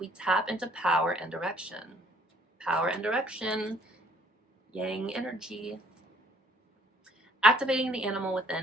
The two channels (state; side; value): normal; both; correlation 0.61